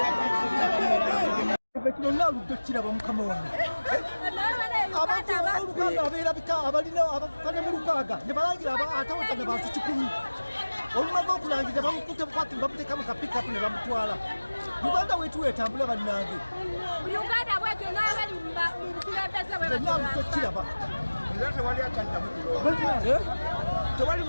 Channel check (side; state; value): both; inverted; correlation -1.00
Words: kino naaludde kiraba mukama wange abantu olukaaga abeerabika abalina abakane mu lukaaga ne balangira atawatana bantu 100 olumaze okulangira bamukutte bukwati bamuteeka mu kapikapu ne bamutwala. Uganda wetu etambula bannange Uganda bwetu n'abali mu bukulembeze bwe naaludde kiraba tewali akyaddamu kulonda. Tewali